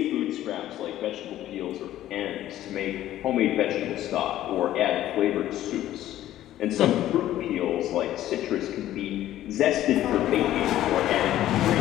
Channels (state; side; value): quieter; right; 13.3 dB